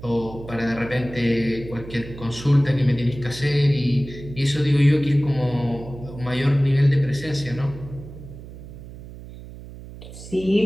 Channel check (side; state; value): right; noise; hum, 15 dB below the sound